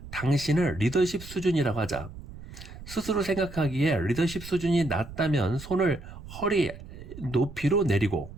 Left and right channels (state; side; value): noise; right; rumble, 14 dB below the sound